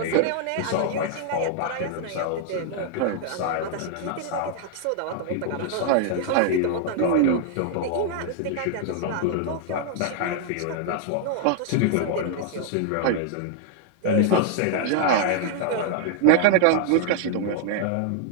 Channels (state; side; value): different; both; correlation 0.00